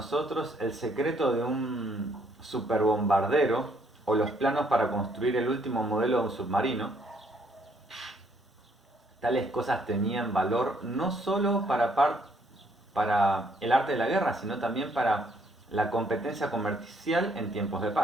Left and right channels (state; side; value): normal; both; correlation 0.68